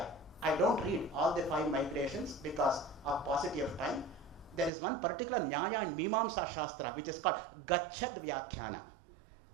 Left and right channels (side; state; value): left; drops out; at 4.7 s